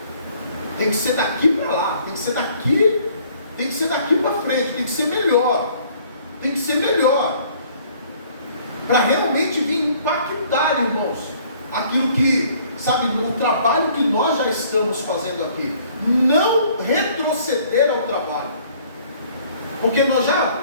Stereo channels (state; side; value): inverted; both; correlation -0.58